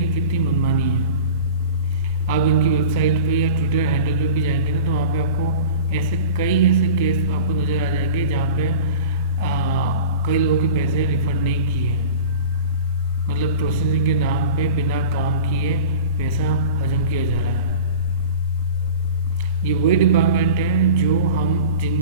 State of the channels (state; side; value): inverted; both; correlation -0.38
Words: कि कितनी मनमानी है। आप इनकी वेबसाइट पे या ट्विटर हैंडल पे भी जाएंगे ना तो वहाँ पे आपको कई ऐसे केस आपको नज़र आ जाएंगे जहाँ पे कई लोगों के पैसे रिफंड नहीं किए, मतलब प्रोसेसिंग के नाम पे बिना काम किए पैसा हजम किया जा रहा है। ये वही डिपार्टमेंट है जो हम